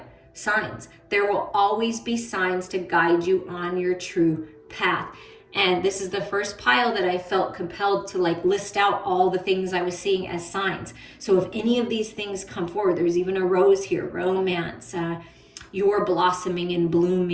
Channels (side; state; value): both; identical; correlation 1.00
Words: signs. There will always be signs to guide you on your true path. And this is the first pile that I felt compelled to like list out all the things I was seeing as signs. So if any of these things come forward, there's even a rose here, romance, you're blossoming and